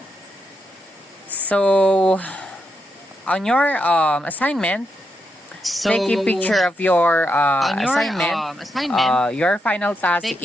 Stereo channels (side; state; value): both; normal; correlation 0.83